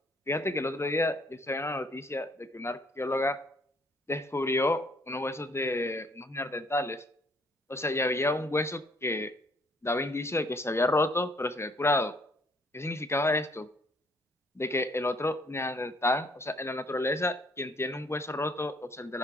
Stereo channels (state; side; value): normal; both; correlation 0.63